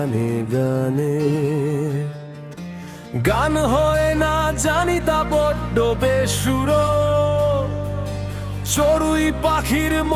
গানে। গান হয় না জানি তা বড্ড বেসুরো, চড়ুই পাখির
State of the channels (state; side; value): identical; both; correlation 1.00